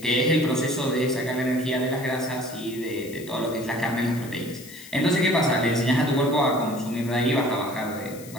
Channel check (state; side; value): noise; left; hiss, 17 dB below the sound